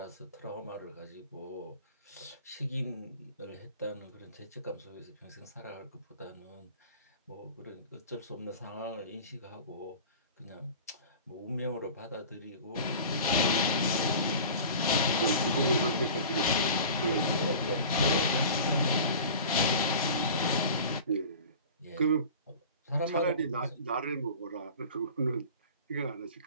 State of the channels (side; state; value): both; inverted; correlation -0.39